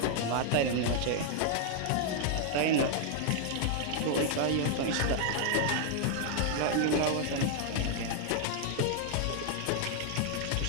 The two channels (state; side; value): different; both; correlation 0.00